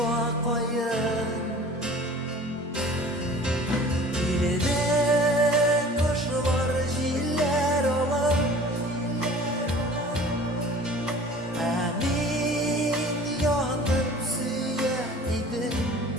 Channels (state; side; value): normal; both; correlation 0.45